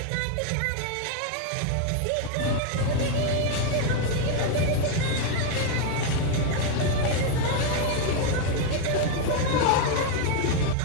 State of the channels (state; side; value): different; both; correlation 0.01